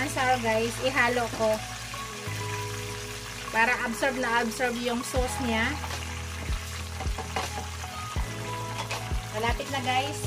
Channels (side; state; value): both; identical; correlation 1.00